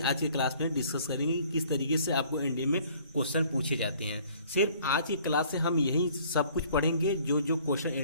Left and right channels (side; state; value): both; inverted; correlation -0.56